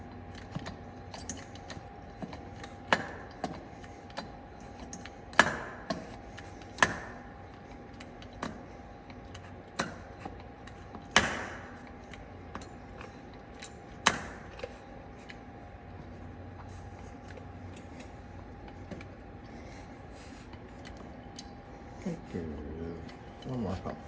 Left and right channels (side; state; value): both; identical; correlation 1.00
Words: Good. One more pump.